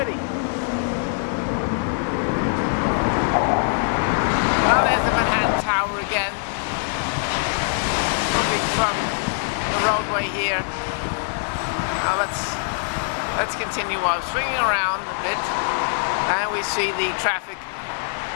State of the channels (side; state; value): right; silent; 60 dB below the other